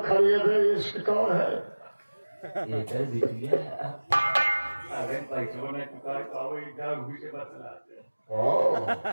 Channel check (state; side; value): inverted; both; correlation -1.00